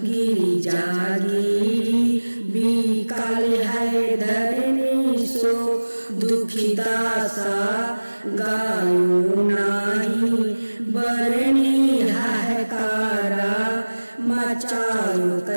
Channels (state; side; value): inverted; both; correlation -1.00